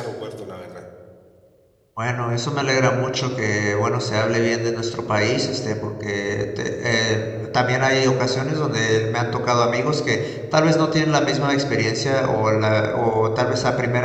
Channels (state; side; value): identical; both; correlation 1.00